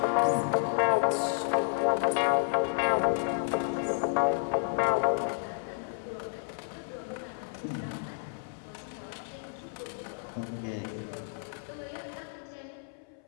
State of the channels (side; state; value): right; silent; 57 dB below the other